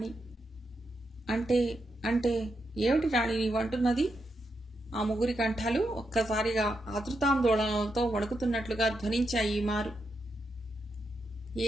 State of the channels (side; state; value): both; normal; correlation 0.84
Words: అంటే అంటే ఏమిటి రాణి నీవంటున్నది? ఆ ముగ్గురి కంఠాలు ఒక్కసారిగా ఆతృతాందోళనలతో వణుకుతున్నట్లుగా ధ్వనించాయి. మారు